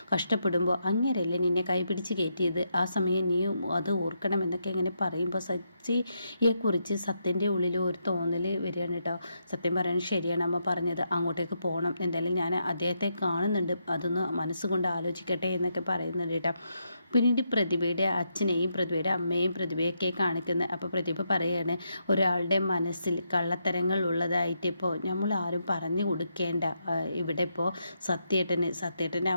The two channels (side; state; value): both; inverted; correlation -0.81